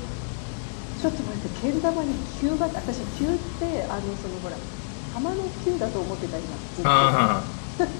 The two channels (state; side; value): silent; right; digital silence